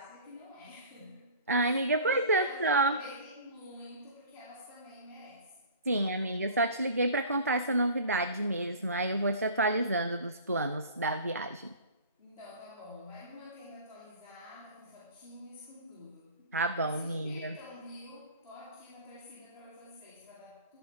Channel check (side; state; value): both; inverted; correlation -0.43